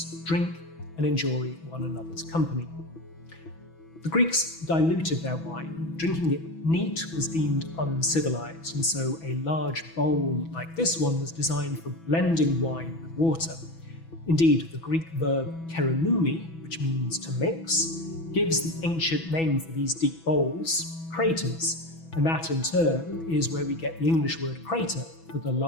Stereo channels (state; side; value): late; right; 6.1 ms